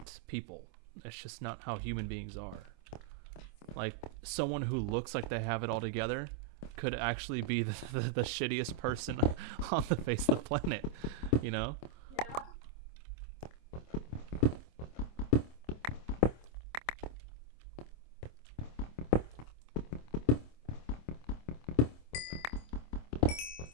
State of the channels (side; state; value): right; late; 26 ms